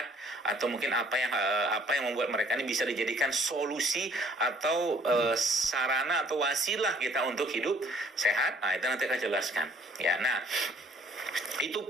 atau mungkin apa yang membuat mereka ini bisa dijadikan solusi atau sarana atau wasilah kita untuk hidup sehat. Nah, itu nanti akan jelaskan. Ya, nah itu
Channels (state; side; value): normal; both; correlation 0.59